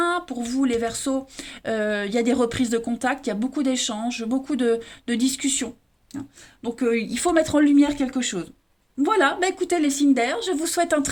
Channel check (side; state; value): both; identical; correlation 1.00